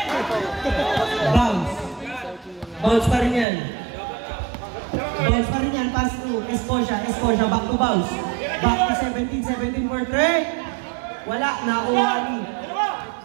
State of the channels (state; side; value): drops out; left; at 3.5 s